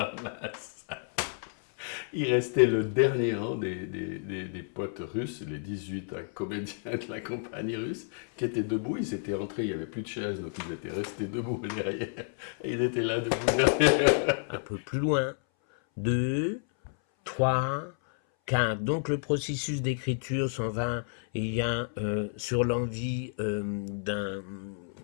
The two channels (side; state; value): right; silent; 58 dB below the other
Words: la salle. Il restait le dernier rang des potes russes, les 18 comédiens de la compagnie russe, qui étaient debout. Ils étaient rentrés, il n'y avait plus de chaises, donc ils étaient restés debout derrière. Et ils étaient là debout derrière. Un peu plus loin. 2, 3, 4. Donc le processus d'écriture s'en va. Il y a sur l'envie